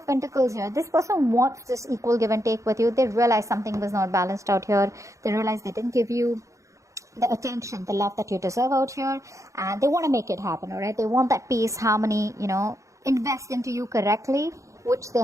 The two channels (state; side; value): late; left; 0.15 ms